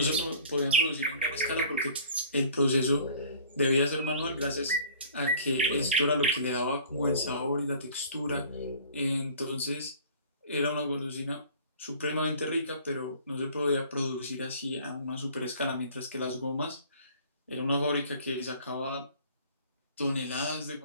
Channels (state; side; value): inverted; both; correlation -0.48